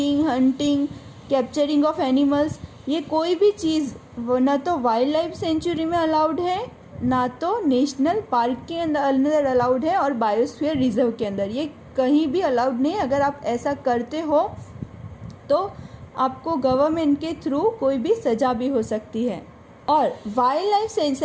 hunting, capturing of animals, ये कोई भी चीज़ न तो वाइल्ड लाइफ सेंचुरी में अलाउड है, ना तो नेशनल पार्क के अंदर अलाउड है, और बायोस्फीयर रिजर्व के अंदर ये कहीं भी अलाउड नहीं। अगर आप ऐसा करते हो तो आपको गवर्नमेंट के थ्रू कोई भी सज़ा भी हो सकती है। और वाइल्ड लाइफ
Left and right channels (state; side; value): identical; both; correlation 1.00